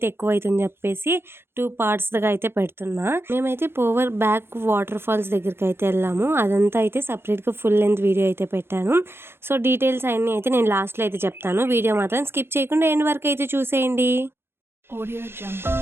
ఎక్కువ అవుతుందని చెప్పేసి 2 పార్ట్స్గా అయితే పెడుతున్నా. మేమైతే పోవర్ బ్యాక్ వాటర్ ఫాల్స్ దగ్గరికి అయితే వెళ్ళాము. అదంతా అయితే సపరేట్గా ఫుల్ లెంత్ వీడియో అయితే పెట్టాను. సో డీటెయిల్స్ అన్నీ అయితే నేను లాస్ట్లో అయితే చెప్తాను. వీడియో మాత్రం స్కిప్ చేయకుండా ఎండ్ వరకు అయితే చూసేయండి.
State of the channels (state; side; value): late; left; 0.11 ms